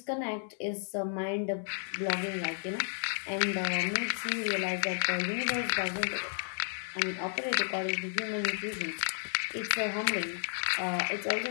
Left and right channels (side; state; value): right; silent; digital silence